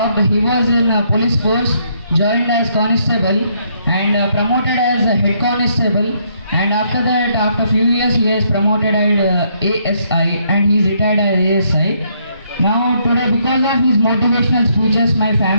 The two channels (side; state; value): both; inverted; correlation -0.72